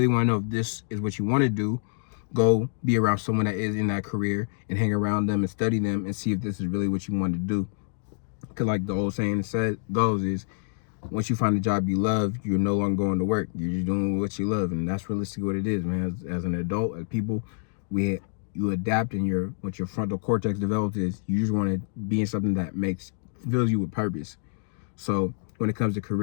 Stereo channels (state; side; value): silent; right; digital silence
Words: want to know if this is what you want to do, go be around someone that is in that career and hang around them and study them and see if this is really what you want to do. Because like the old saying goes is, once you find a job you love, you're no longer going to work. You're just doing what you love. And that's realistically what it is, man. As an adult, as people, you adapt, and what your frontal cortex develops is you just want to be in something that fills you with purpose. So when it comes to